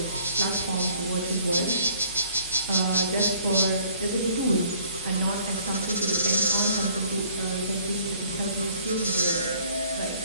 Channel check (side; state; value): both; inverted; correlation -0.59